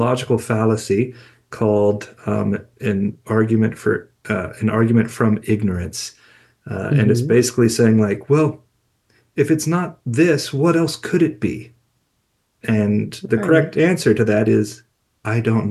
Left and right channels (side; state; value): both; identical; correlation 1.00